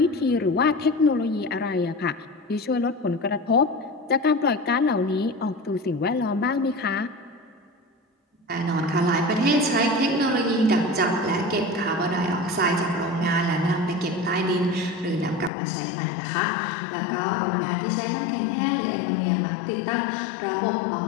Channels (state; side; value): drops out; right; at 15.5 s